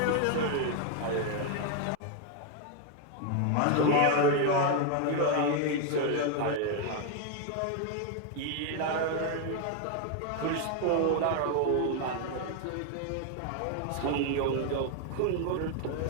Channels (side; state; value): both; different; correlation 0.01